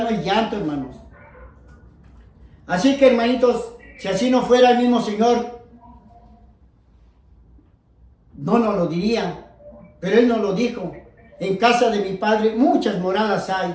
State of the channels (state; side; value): identical; both; correlation 1.00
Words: hay llanto, hermanos. Así que, hermanitos, si así no fuera el mismo Señor, no nos lo diría. Pero Él nos lo dijo. En casa de mi Padre muchas moradas hay.